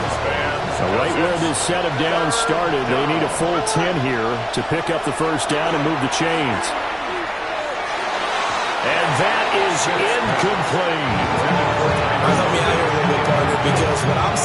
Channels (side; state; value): both; identical; correlation 1.00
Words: So right where this set of downs started, they need a full 10 here to pick up the 1st down and move the chains. And that is incomplete. Help me out here a little bit, partner, because what I'm